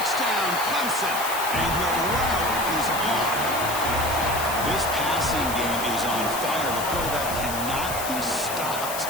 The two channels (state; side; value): noise; left; hiss, 7 dB below the sound